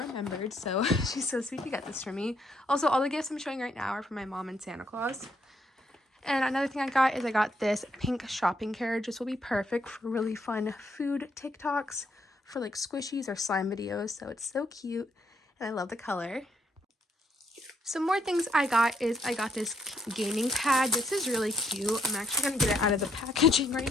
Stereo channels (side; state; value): both; normal; correlation 0.73